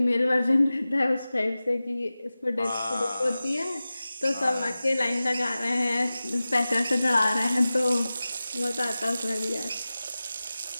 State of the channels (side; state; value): both; inverted; correlation -0.96